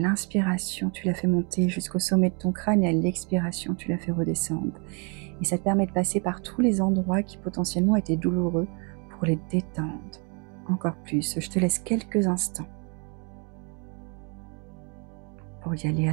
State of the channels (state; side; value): quieter; left; 35.0 dB